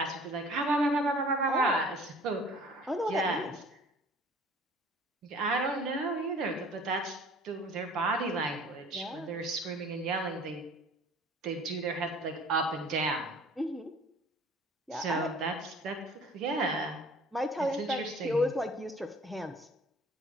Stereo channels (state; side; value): normal; both; correlation 0.49